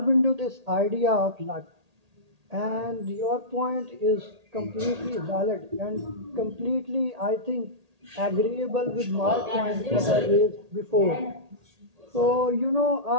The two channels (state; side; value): late; left; 1.8 ms